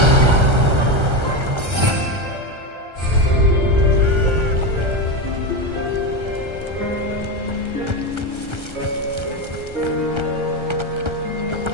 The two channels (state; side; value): late; left; 1.3 ms